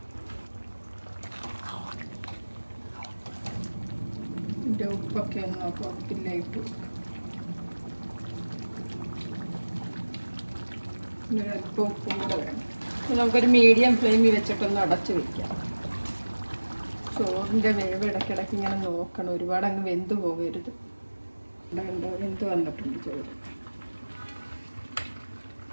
ഇതിൻ്റെ ഉപ്പൊക്കെ ഒന്ന് നോക്കാം. ഉപ്പില്ല ഇട്ട് കൊടുക്കാം. അല്പം ഉപ്പും കൂടെ വേണം. നമുക്കൊരു മീഡിയം ഫ്ലെയിമിൽ വെച്ചിട്ടൊന്ന് അടച്ച് വയ്ക്കാം. ചോറിൻ്റെ വേവ് ഇടയ്ക്കിടയ്ക്ക് ഇങ്ങനെ നോക്കണം. ഒരുപാട് അങ്ങ് വെന്ത് പോകരുത്. വെന്ത് വന്നിട്ടുണ്ട് ചോറ്.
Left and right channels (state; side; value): inverted; both; correlation -1.00